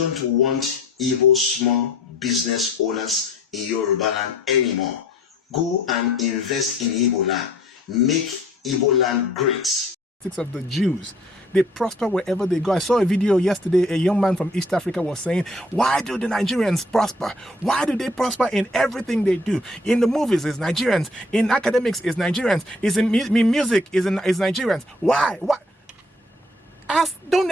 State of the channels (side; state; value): both; normal; correlation 0.57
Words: want Igbo small business owners in Yoruba land anymore. Go and invest in Igbo land. Make Igbo land great. Of the Jews. They prosper wherever they go. I saw a video yesterday, a young man from East Africa was saying, why do the Nigerians prosper? Why do they prosper in everything they do? In the movies, it's Nigerians. In academics, it's Nigerians. In music, it's Nigerians. Why? Why? Don't